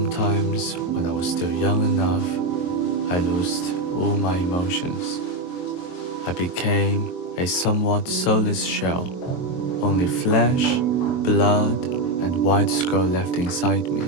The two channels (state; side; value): late; right; 23 ms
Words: when I was still young enough, I lost all my emotions. I became a somewhat soulless shell, only flesh, blood, and white skull left inside me.